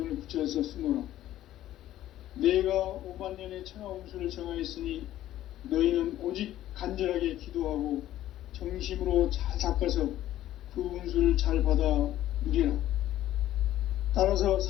붙여서 쓰노라. 내가 5만년의 천하 운수를 정하였으니 너희는 오직 간절하게 기도하고 정심으로 잘 닦아서 그 운수를 잘 받아 누리라. 따라서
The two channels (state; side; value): quieter; right; 13.4 dB